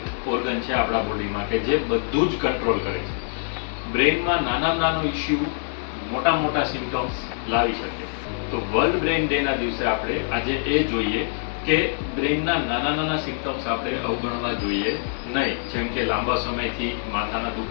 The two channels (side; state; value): right; silent; digital silence